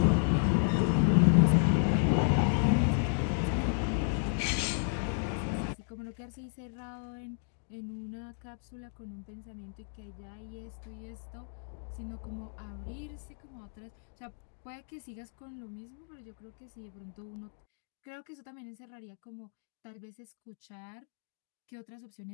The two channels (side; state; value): right; silent; digital silence